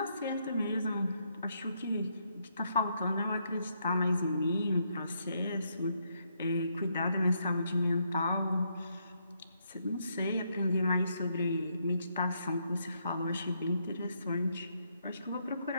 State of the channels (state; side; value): inverted; both; correlation -0.76